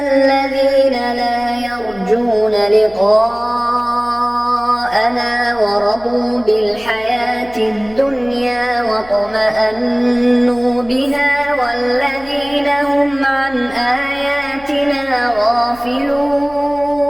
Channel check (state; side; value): noise; left; hum, 23 dB below the sound